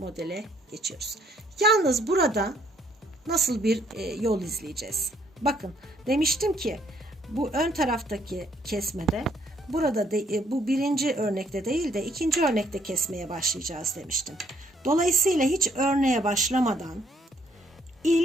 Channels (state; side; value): normal; both; correlation 0.67